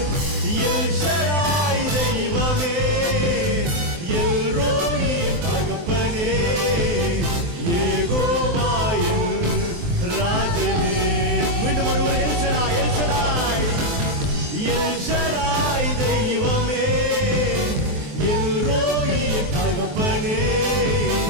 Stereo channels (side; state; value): left; late; 23 ms